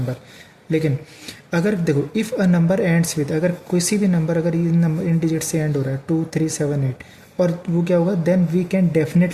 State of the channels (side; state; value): both; identical; correlation 1.00